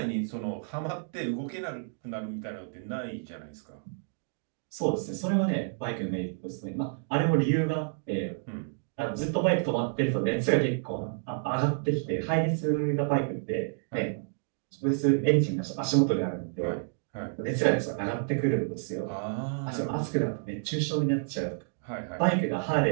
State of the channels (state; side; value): silent; left; digital silence